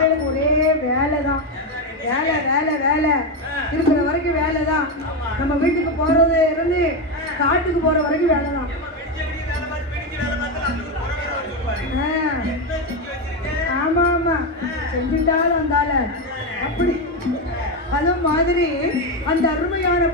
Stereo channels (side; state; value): both; normal; correlation 0.10